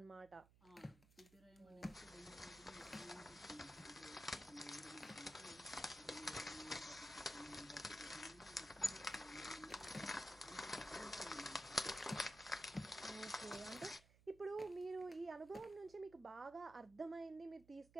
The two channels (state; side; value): noise; right; hum, 24 dB below the sound